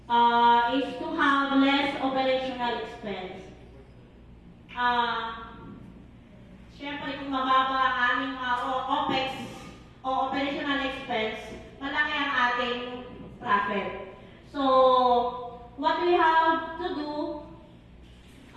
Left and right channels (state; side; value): identical; both; correlation 1.00